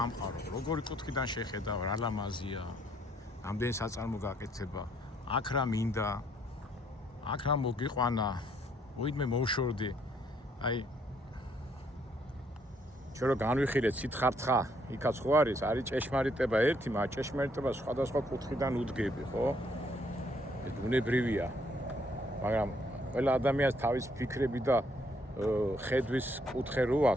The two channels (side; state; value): both; normal; correlation 0.68